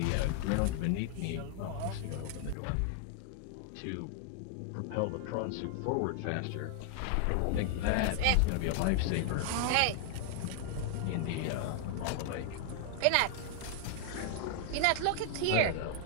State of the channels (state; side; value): different; both; correlation 0.00